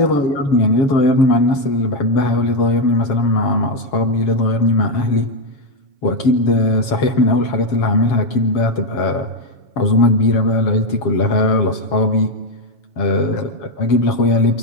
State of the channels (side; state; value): right; late; 7.2 ms